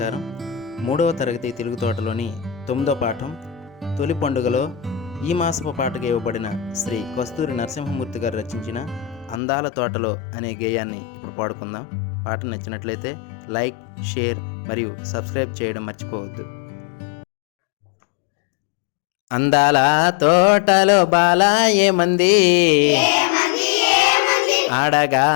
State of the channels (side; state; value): right; drops out; at 9.4 s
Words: 3వ తరగతి తెలుగు తోటలోని 9వ పాఠం తొలి పండుగలో ఈ మాసపు పాటగా ఇవ్వబడిన శ్రీ కస్తూరి నరసింహమూర్తి గారు రచించిన అందాల తోటలో అనే గేయాన్ని ఇప్పుడు పాడుకుందాం. పాట నచ్చినట్లయితే లైక్, షేర్ మరియు సబ్స్క్రైబ్ చేయడం మర్చిపోవద్దు. అందాల తోటలో బాల ఏమంది, ఆడగా